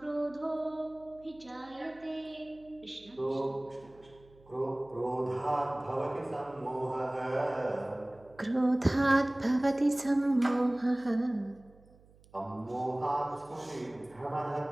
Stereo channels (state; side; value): noise; right; hum, 27 dB below the sound